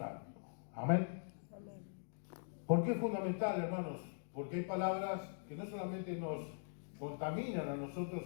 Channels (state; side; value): silent; right; digital silence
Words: Amén. Amén. ¿Por qué es fundamental, hermanos? Porque hay palabras que no solamente nos contaminan a nosotros,